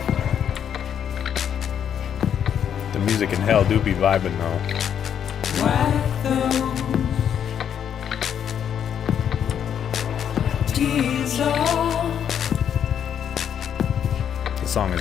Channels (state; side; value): quieter; right; 8.7 dB